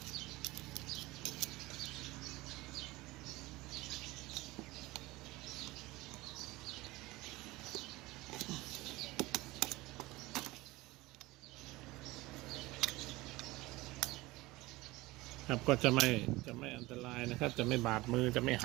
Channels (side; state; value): left; quieter; 20.2 dB